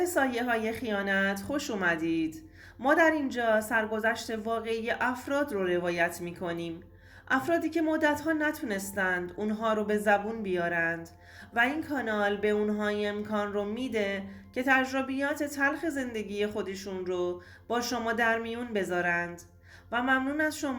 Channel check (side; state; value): both; identical; correlation 1.00